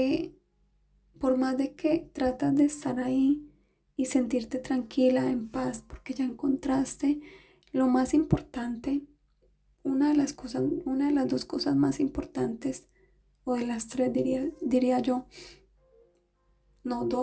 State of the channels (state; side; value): identical; both; correlation 1.00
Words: por más de que tratas de estar ahí y sentirte tranquila, en paz, porque ya encontraste lo más importante, una de las dos cosas más importantes, o de las tres diría yo, no